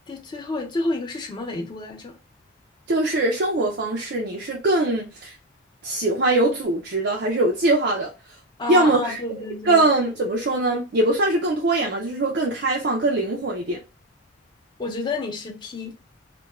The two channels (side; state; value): both; normal; correlation 0.09